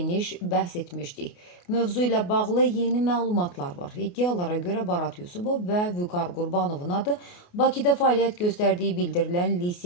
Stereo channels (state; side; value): late; right; 28 ms